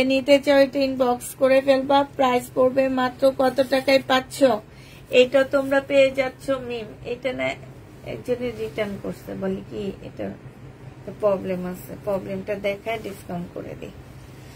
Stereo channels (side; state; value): both; identical; correlation 1.00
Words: নিতে চাও এটা ইনবক্স করে ফেলবা। প্রাইস পড়বে মাত্র কত টাকায় পাচ্ছ? এটা তোমরা পেয়ে যাচ্ছ মিম। এটা না একজনের রিটার্ন করছে, বলি কি এটা প্রবলেম আছে, প্রবলেমটা দেখায় ডিসকাউন্ট করে দিই।